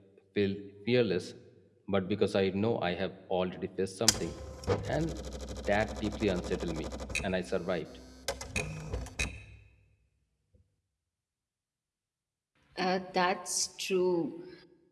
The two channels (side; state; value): both; identical; correlation 1.00